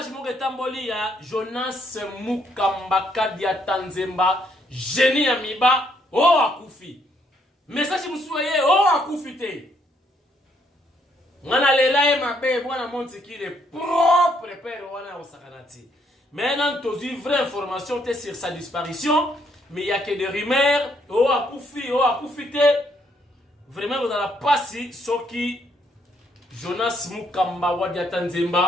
Mogetamboli ya Jonas Mukambaka dia Tanzemba, génie amiba, oh akufi. Message Moussouye, oh akufi te. Wana lela e mabe bwana monti ki le propre père wana osakanati. Maintenant tu as vraie information sur sa disparition, mais il y a que des rumeurs, oh akufi te. Vraiment vous allez passer soki Jonas Mukamba wadia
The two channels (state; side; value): normal; both; correlation 0.71